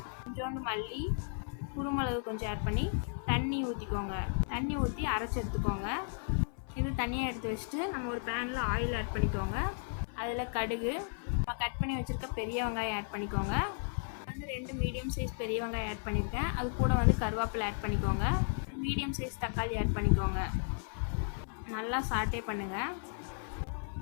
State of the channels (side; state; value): right; silent; 55 dB below the other